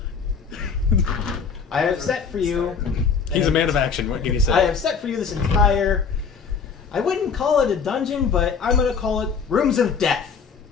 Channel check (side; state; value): right; quieter; 5.9 dB